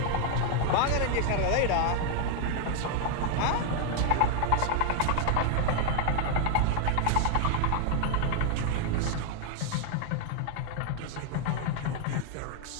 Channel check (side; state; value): both; different; correlation 0.00